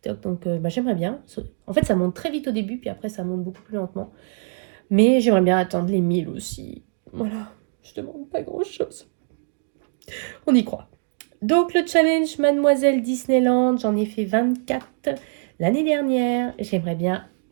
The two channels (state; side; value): silent; left; 63 dB below the other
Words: Donc j'aimerais bien. En fait, ça monte très vite au début, puis après, ça monte beaucoup plus lentement. Mais j'aimerais bien atteindre les 1000 aussi. Voilà, je demande pas grand-chose. On y croit. Donc le challenge Mademoiselle Disneyland, j'en ai fait 24 l'année dernière. J'aimerais bien